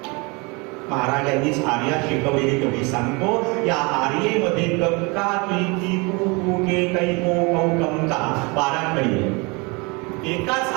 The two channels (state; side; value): quieter; left; 28.5 dB